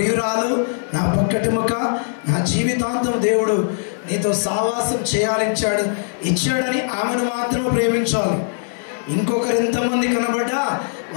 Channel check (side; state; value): right; silent; digital silence